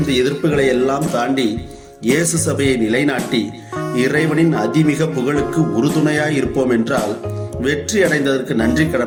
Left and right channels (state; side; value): identical; both; correlation 1.00